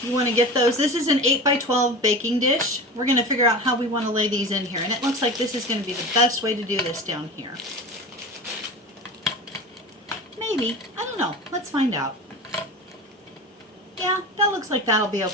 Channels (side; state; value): both; normal; correlation 0.31